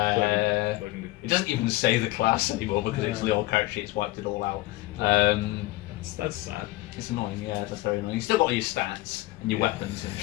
It doesn't even say the class anymore because it's the old character sheet. It's wiped it all out. That's sad. It's annoying, yeah, that's very annoying. You still got all your stats and your Yeah. weapons and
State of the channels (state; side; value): quieter; right; 18.9 dB